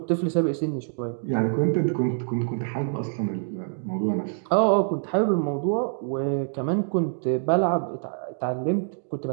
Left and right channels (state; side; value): silent; left; digital silence